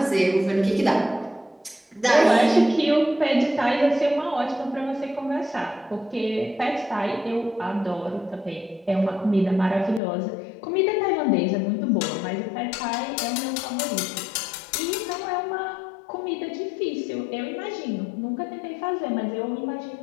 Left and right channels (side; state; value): right; drops out; at 10.0 s